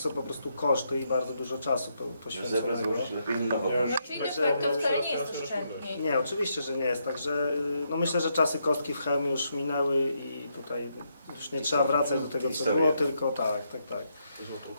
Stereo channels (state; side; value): inverted; both; correlation -0.78